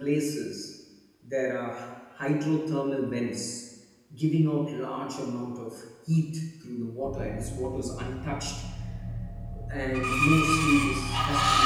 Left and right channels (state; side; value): identical; both; correlation 1.00